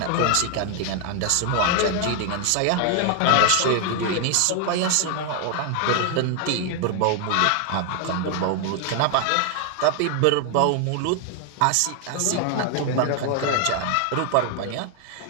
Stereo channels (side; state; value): both; different; correlation 0.00